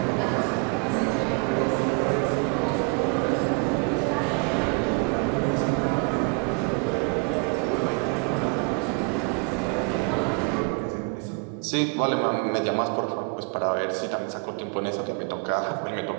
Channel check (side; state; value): left; quieter; 32.6 dB